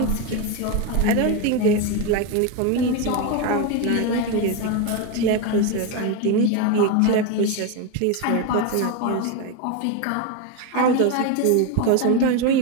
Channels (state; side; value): different; both; correlation 0.03